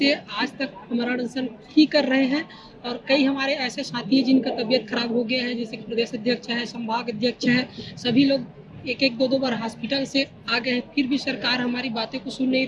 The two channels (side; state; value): both; identical; correlation 1.00